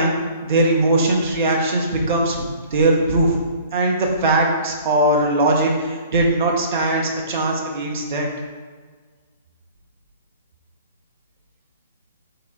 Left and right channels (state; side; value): inverted; both; correlation -0.48